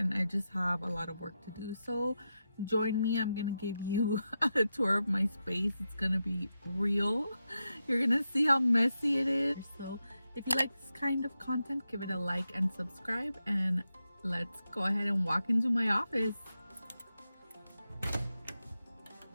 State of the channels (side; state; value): both; inverted; correlation -0.88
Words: I just have a lot of work to do. So join me. I'm gonna give you a tour of my space. It's gonna be real. You're gonna see how messy it is. So if you like this kind of content, give it a like and subscribe, and let's go ahead and walk into my office.